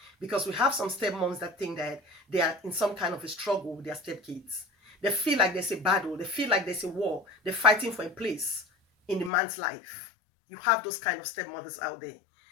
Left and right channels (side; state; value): right; drops out; at 9.3 s